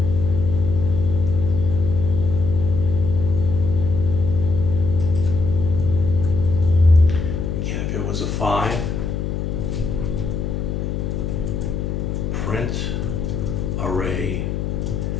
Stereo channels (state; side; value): noise; left; hum, 2 dB below the sound